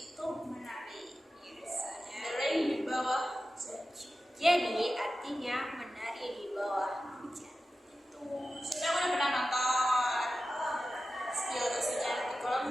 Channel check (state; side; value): normal; both; correlation 0.93